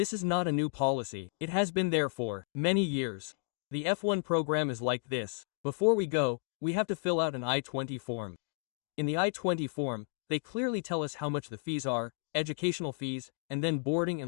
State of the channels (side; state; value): right; silent; 56 dB below the other